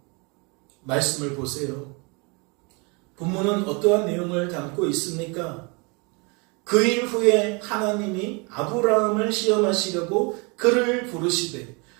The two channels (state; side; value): quieter; left; 30.6 dB